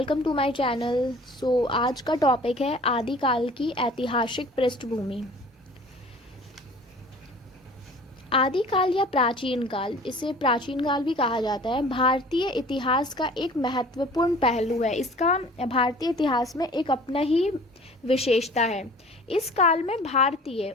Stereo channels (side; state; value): both; normal; correlation 0.47